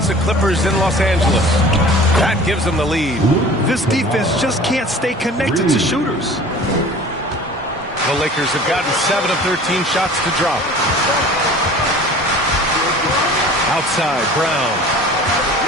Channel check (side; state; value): both; normal; correlation 0.44